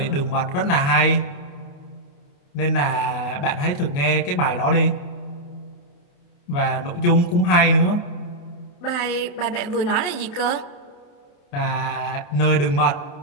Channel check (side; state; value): right; late; 28 ms